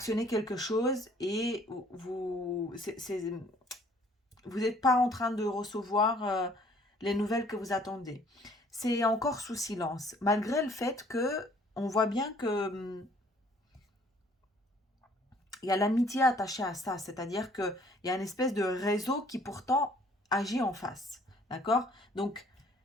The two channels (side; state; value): both; normal; correlation 0.59